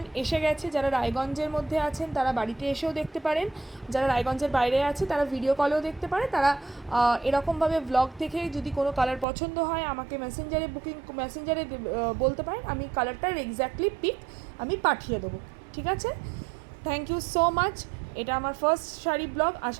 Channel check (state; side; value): drops out; left; at 9.2 s